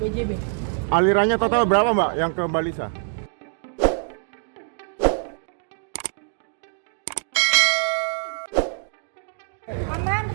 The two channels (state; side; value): silent; left; digital silence